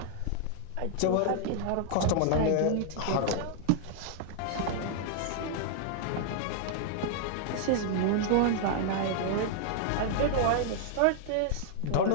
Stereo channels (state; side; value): different; both; correlation -0.01